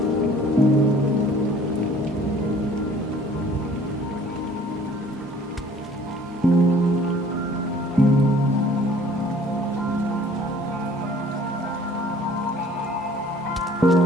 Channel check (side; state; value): both; normal; correlation 0.53